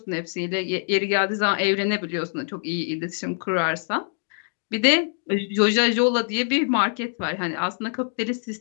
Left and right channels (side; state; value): right; silent; 62 dB below the other